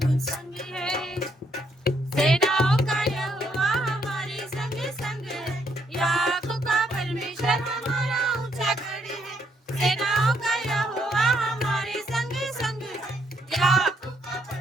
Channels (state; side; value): normal; both; correlation 0.73